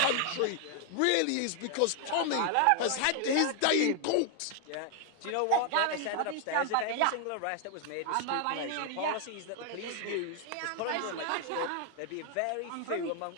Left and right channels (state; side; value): different; both; correlation 0.00